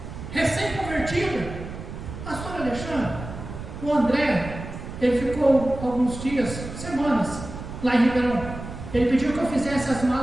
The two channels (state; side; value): noise; right; rumble, 10 dB below the sound